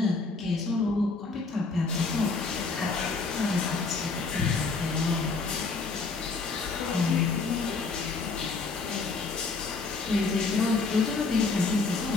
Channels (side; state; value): right; quieter; 4.2 dB